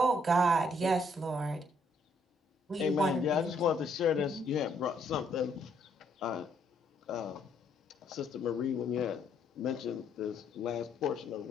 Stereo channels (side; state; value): both; normal; correlation 0.69